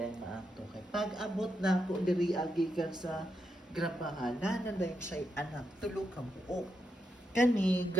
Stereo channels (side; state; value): both; normal; correlation 0.82